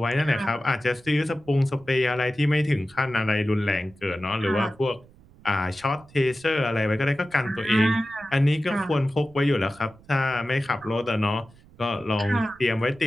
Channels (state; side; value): noise; right; rumble, 25 dB below the sound